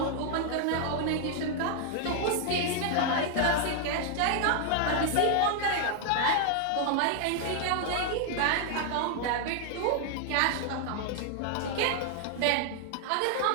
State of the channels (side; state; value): both; different; correlation 0.00